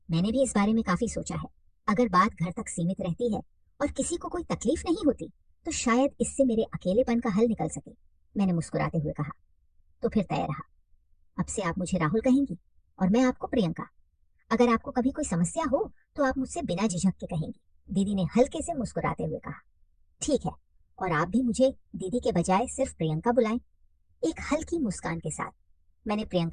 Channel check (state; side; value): identical; both; correlation 1.00